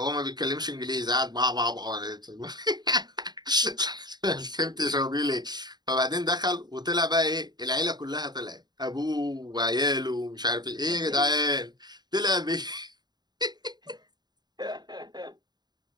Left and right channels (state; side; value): late; left; 0.20 ms